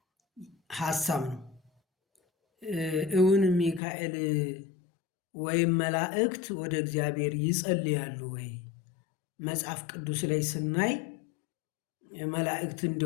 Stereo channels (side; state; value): right; drops out; at 3.8 s